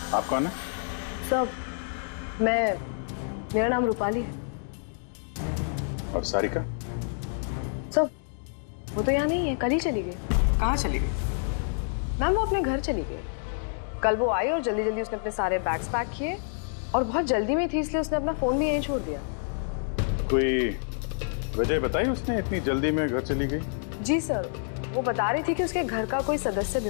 आप कौन है? सब, मेरा नाम रूपाली है। और सारिका? सब, वो तो यहाँ नहीं है, कल ही चली गई। कहाँ चली गई? मैम वो अपने घर चली गई। कल वो आई और जल्दी जल्दी उसने अपने सारे बैग्स पैक किए, और बहुत जल्दी में थी इसलिए उसने अपना फोन भी यहीं छोड़ दिया। कोई वजह बताई उसने इतनी जल्दी में घर चली गई? जी सर, वो बता रही थी कि उसके घर का कोई सदस्य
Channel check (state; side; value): silent; right; digital silence